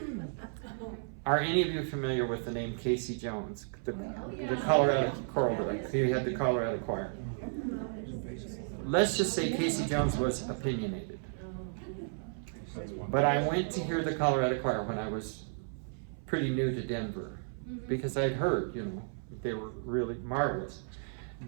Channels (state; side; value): silent; left; 56 dB below the other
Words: Are any of you familiar with the name Casey Jones, the Colorado choral director? He had the Colorado choir. Let's just say Casey Jones was opinionated. But I went to hear the Colorado choir when I was pretty new to Denver, because I'd heard, you know, they were really marvelous.